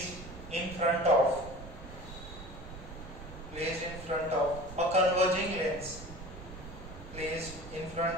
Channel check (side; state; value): right; noise; rumble, 13 dB below the sound